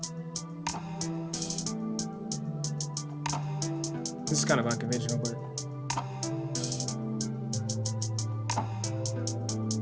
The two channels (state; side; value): identical; both; correlation 1.00